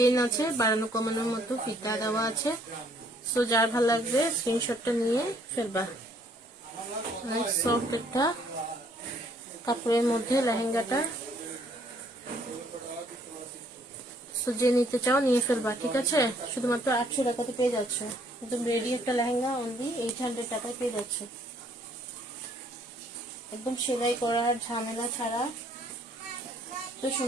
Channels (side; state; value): both; normal; correlation 0.64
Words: আছে, বাড়ানো কমানোর মতো ফিতা দেওয়া আছে। সো যার ভালো লাগবে স্ক্রিনশটটা নিয়ে ফেলবা। অনেক সফট একটা কাপড়ের মধ্যে লেহেঙ্গাটা। সো যে নিতে চাও নিয়ে ফেলবা, ঠিক আছে? শুধুমাত্র 800 টাকাতে পেয়ে যাচ্ছ একদম রেডি একটা লেহেঙ্গা, অনলি 800 টাকায় পেয়ে যাচ্ছ, একদম সেলাই করার ঝামেলা ছাড়া। তো